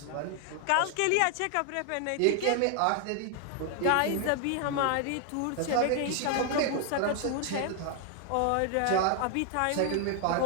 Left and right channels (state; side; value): different; both; correlation 0.00